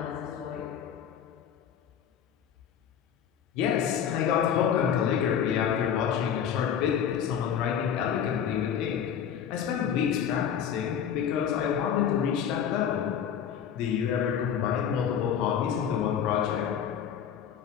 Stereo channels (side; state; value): right; quieter; 8.5 dB